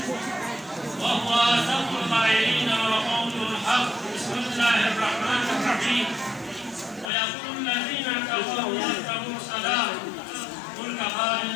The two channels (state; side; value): drops out; right; at 7.1 s